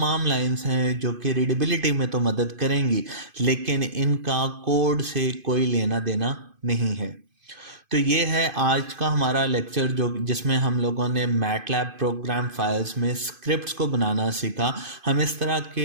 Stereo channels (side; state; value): left; late; 2.5 ms